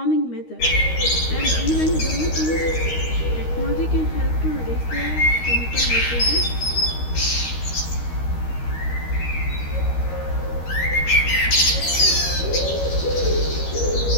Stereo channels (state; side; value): late; right; 13 ms